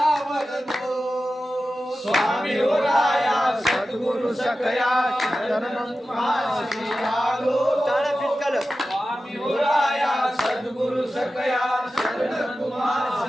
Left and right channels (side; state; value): both; normal; correlation 0.94